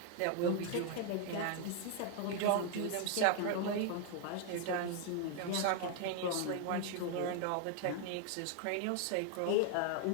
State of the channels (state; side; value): different; both; correlation 0.00